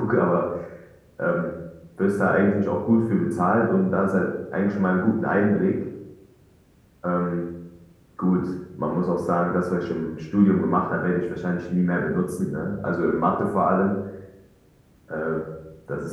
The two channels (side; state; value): both; identical; correlation 1.00